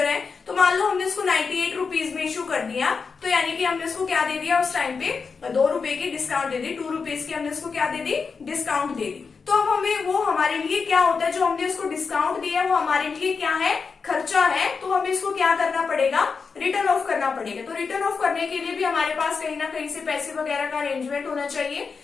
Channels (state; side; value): quieter; right; 5.2 dB